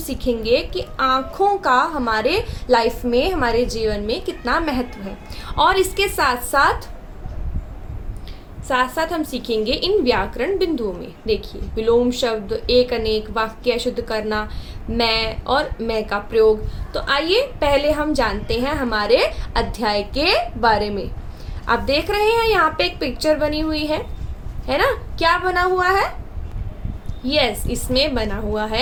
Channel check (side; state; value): both; identical; correlation 1.00